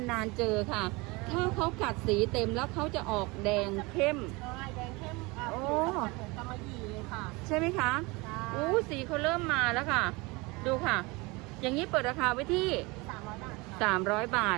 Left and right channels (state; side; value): quieter; left; 25.0 dB